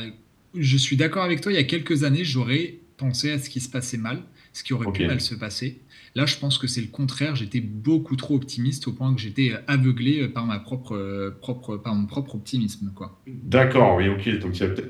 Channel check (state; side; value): identical; both; correlation 1.00